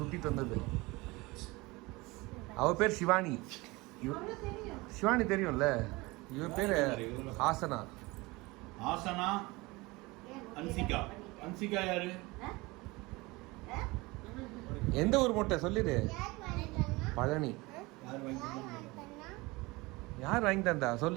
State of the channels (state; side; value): quieter; left; 23.0 dB